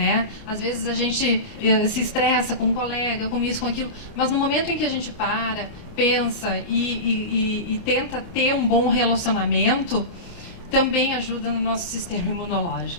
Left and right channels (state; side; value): late; right; 29 ms